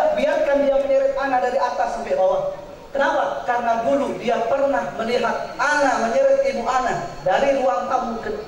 dia menyeret anak dari atas sampai bawah. Kenapa? Karena dulu dia pernah melihat anak menyeret ibu anak dari ruang tamu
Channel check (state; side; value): identical; both; correlation 1.00